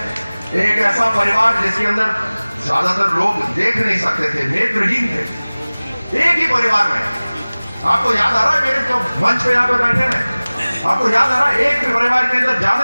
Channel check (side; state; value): both; inverted; correlation -1.00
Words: एक ऐसा परिवार जिसके अंदर ज्यादातर लोग देख नहीं सकते थे, नेत्रहीन थे। एक ही परिवार में, आपको याद आ रहा है मेरे जो मंच पे यहाँ पे बैठे हैं, आपको याद आ रहा है एक परिवार के अंदर